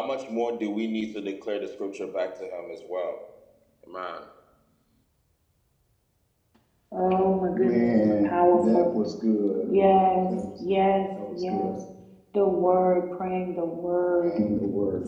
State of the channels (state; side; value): identical; both; correlation 1.00